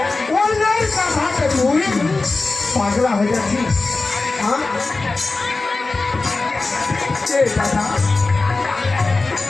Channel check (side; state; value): right; quieter; 3.6 dB